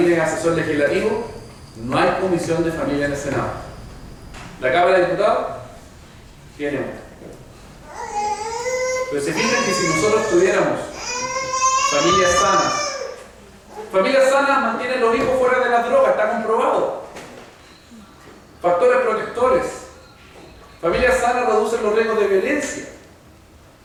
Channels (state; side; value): identical; both; correlation 1.00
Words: es asesor legislativo, no hay Comisión de Familia en el Senado. La Cámara de Diputados tiene una. Pero se fijan que si nosotros tuviéramos familias sanas mantienen los hijos fuera de las drogas, está comprobado. Factores protectores. Familias sanas reducen los riesgos de violencia.